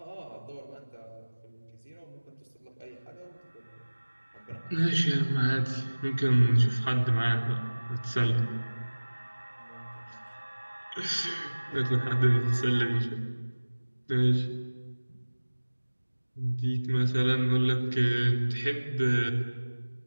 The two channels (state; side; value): inverted; both; correlation -1.00